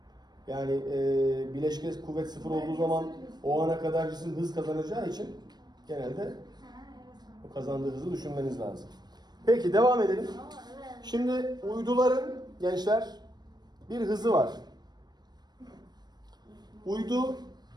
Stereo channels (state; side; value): late; left; 0.20 ms